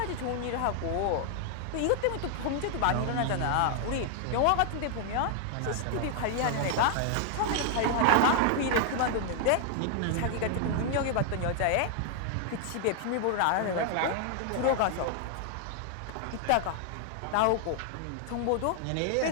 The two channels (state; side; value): different; both; correlation 0.00